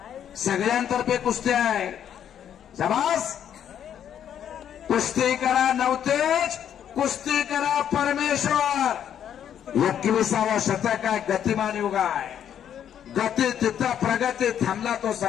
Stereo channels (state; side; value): quieter; right; 9.5 dB